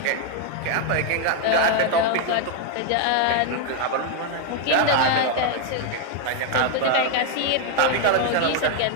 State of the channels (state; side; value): different; both; correlation 0.01